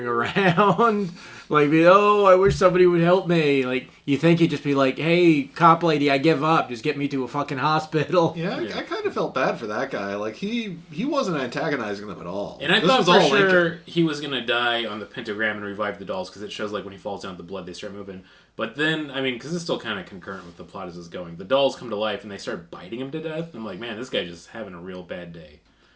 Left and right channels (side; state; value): both; identical; correlation 1.00